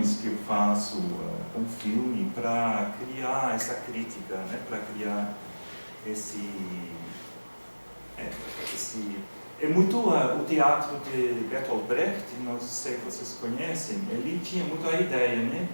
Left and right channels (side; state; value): both; inverted; correlation -1.00